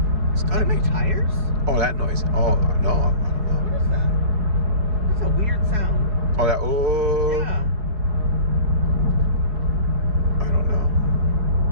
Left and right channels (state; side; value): late; left; 4.7 ms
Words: It's gotta be tires. Oh, that noise. Oh no, I don't know. What is that? That's a weird sound. Oh, that. Oh. Yeah. I don't know.